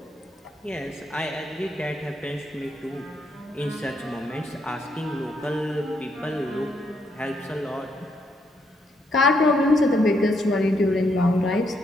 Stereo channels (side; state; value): both; normal; correlation 0.75